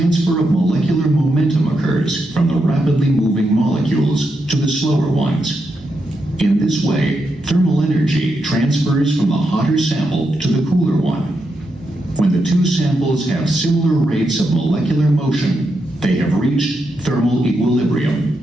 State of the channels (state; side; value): normal; both; correlation 0.84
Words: of molecular momentum occurs from the rapidly moving molecules to the slower ones. In this way, thermal energy transfers from the hotter sample to the cooler one. When the two samples have similar rates of molecular motion, they have reached thermal